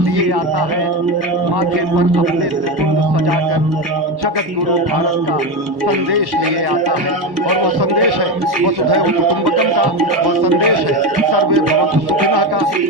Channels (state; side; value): late; left; 1.1 ms